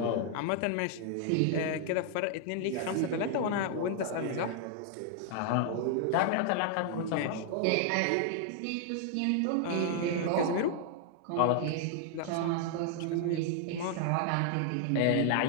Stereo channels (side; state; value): both; different; correlation 0.00